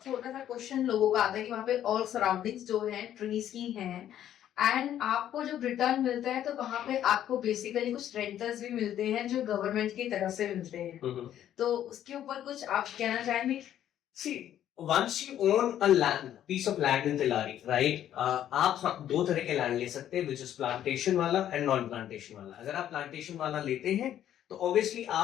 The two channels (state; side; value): quieter; right; 11.1 dB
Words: छोटा सा क्वेश्चन लोगों का आता है कि वहाँ पे ऑल सराउंडिंग्स जो है ट्रीज की हैं, एंड आपको जब रिटर्न मिलता है तो वहाँ पे आपको बेसिकली कुछ रेंटर्स भी मिलते हैं जो गवर्नमेंट की तरफ से मिलते हैं। तो उसके ऊपर कुछ आप कहना चाहेंगे? See, once you own a piece of land in Tilari, right? आप 2 तरह के लैंड ले सकते हैं, which is plantation वाला and non plantation वाला। अगर आप plantation वाला लेते हैं तो ऑब्वियसली